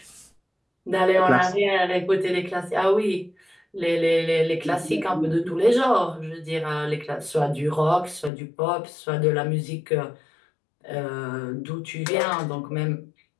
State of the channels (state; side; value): drops out; right; at 8.3 s